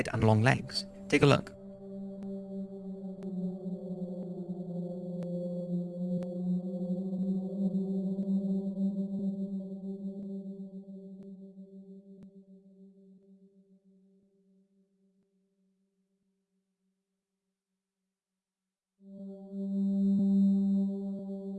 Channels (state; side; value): identical; both; correlation 1.00